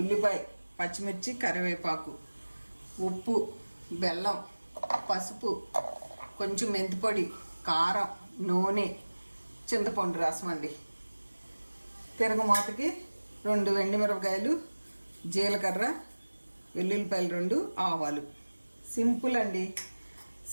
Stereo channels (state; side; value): inverted; both; correlation -1.00